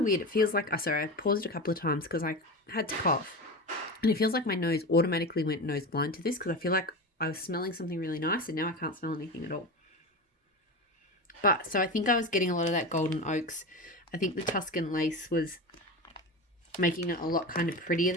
weird. It feels like, sorry, I paused a couple of times because I had to cough. And it feels like my nose automatically went nose blind to this, because I feel like I was smelling something really nice and now I can't smell anything at all. But, so I think I was getting a lot of that golden oaks. I think the Tuscan lace was making it a lot kind of prettier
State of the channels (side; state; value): both; normal; correlation 0.25